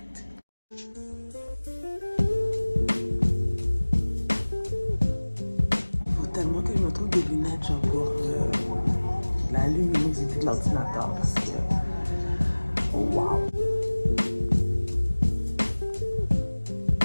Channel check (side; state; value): both; inverted; correlation -1.00